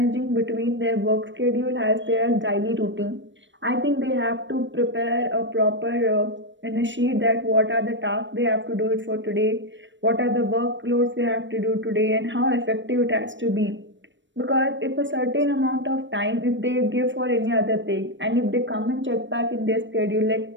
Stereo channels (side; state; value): left; late; 0.54 ms